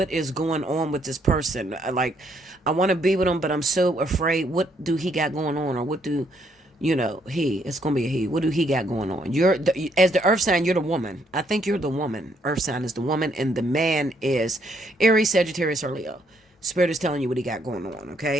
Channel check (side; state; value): both; normal; correlation 0.70